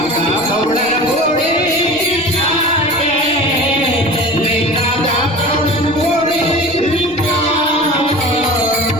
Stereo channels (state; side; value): noise; left; rumble, 24 dB below the sound